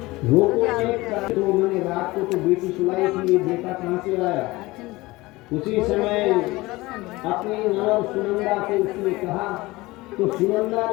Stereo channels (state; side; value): quieter; right; 20.6 dB